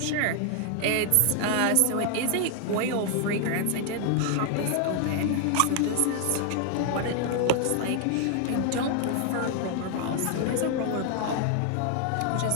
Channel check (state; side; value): different; both; correlation 0.00